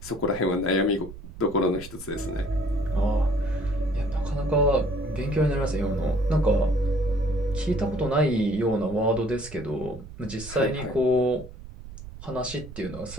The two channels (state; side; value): noise; right; rumble, 14 dB below the sound